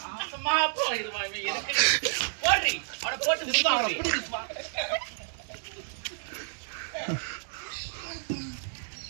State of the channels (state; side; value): silent; left; digital silence